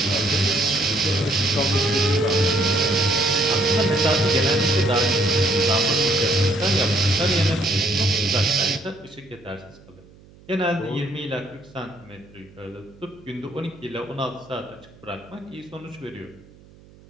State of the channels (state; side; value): noise; right; hum, 25 dB below the sound